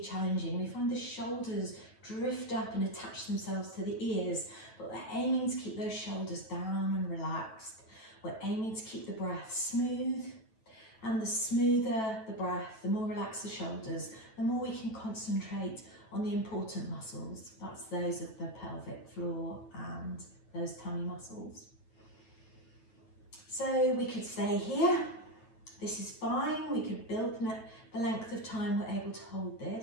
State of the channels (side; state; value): right; late; 9.1 ms